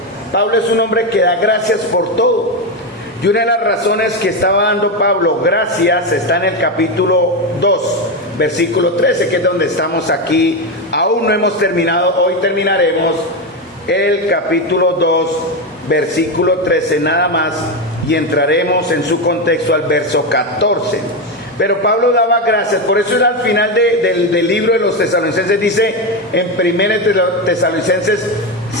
Pablo es un hombre que da gracias por todo. Y una de las razones que estaba dando Pablo gracias está en el capítulo 2, versículo 13, que es donde estamos aquí. Aún no hemos terminado, hoy terminaremos el capítulo 2, versículo 13 nada más, y entraremos en su contexto al verso 14. Pero Pablo daba gracias, por eso al final del libro de los Tesalonicenses dice en 1 Tesalonicenses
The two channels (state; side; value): normal; both; correlation 0.11